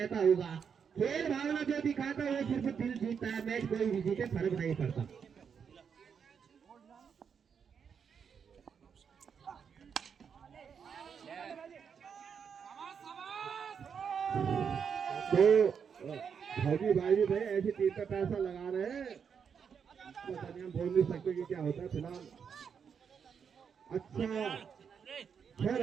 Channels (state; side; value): quieter; left; 6.9 dB